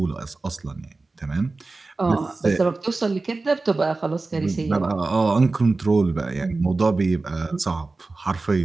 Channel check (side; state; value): left; quieter; 3.5 dB